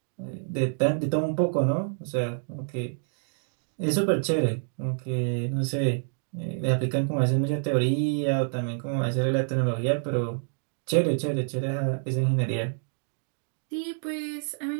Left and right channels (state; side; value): silent; left; digital silence